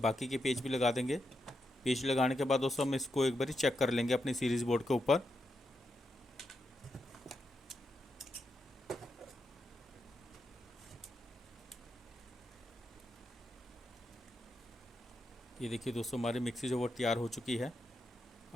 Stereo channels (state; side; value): normal; both; correlation 0.85